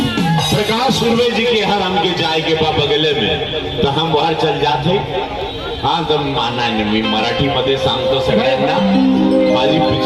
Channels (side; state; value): both; identical; correlation 1.00